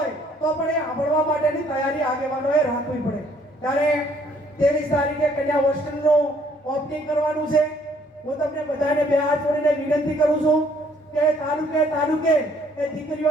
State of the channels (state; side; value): normal; both; correlation 0.63